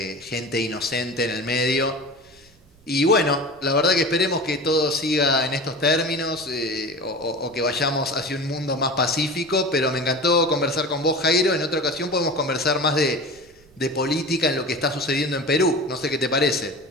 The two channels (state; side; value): noise; right; rumble, 30 dB below the sound